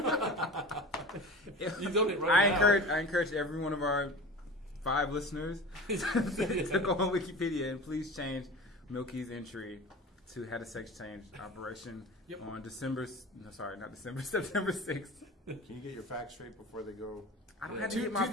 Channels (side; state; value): both; normal; correlation 0.35